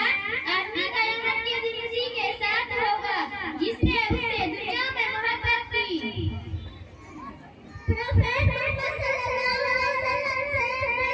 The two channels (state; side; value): identical; both; correlation 1.00